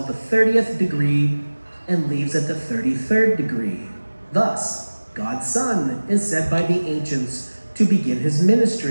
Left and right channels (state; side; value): inverted; both; correlation -1.00